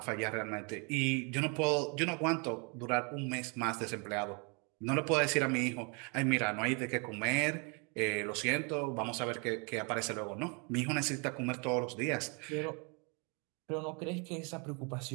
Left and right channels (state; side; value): quieter; left; 33.6 dB